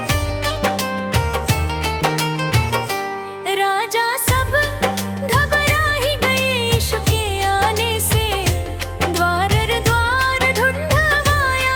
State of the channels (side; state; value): both; identical; correlation 1.00